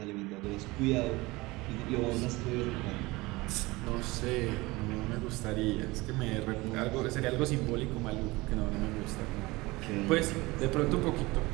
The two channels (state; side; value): quieter; left; 21.9 dB